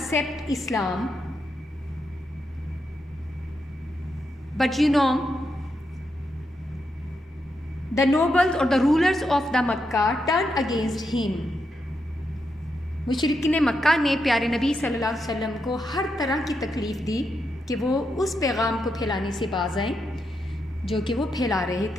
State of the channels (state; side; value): normal; both; correlation 0.83